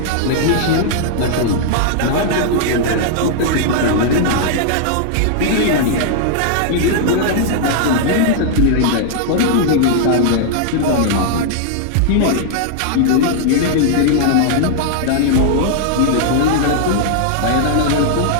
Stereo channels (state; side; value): different; both; correlation -0.01